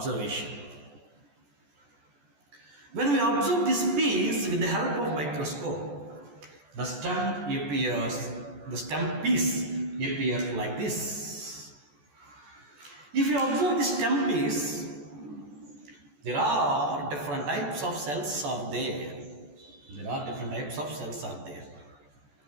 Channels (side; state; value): left; late; 14 ms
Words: When we observe this piece with the help of microscope, the stem piece appears like this. If you observe this stem piece, there are different types of cells are there.